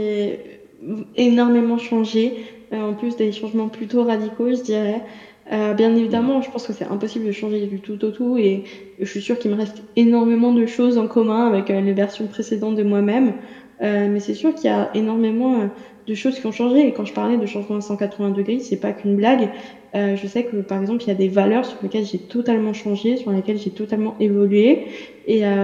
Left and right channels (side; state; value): both; identical; correlation 1.00